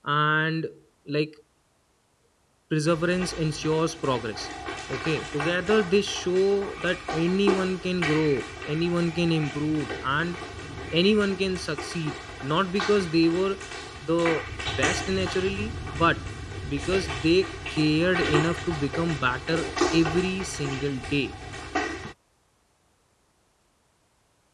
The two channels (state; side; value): identical; both; correlation 1.00